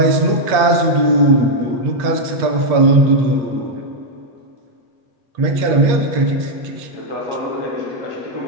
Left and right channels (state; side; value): late; left; 8.4 ms